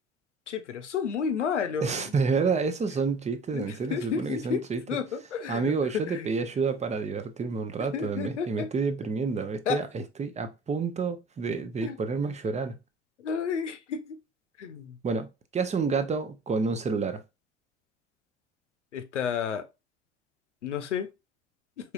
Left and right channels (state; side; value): normal; both; correlation 0.45